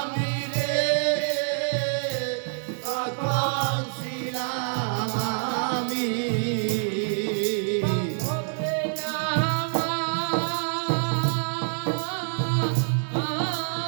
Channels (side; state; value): left; silent; digital silence